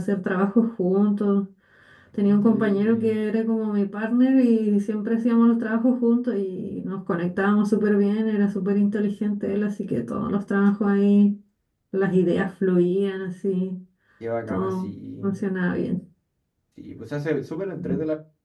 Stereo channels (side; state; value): both; identical; correlation 1.00